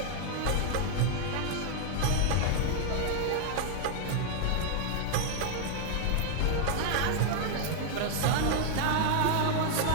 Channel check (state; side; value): different; both; correlation 0.00